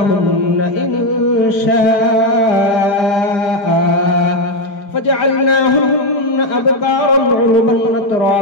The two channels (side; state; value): right; late; 4.5 ms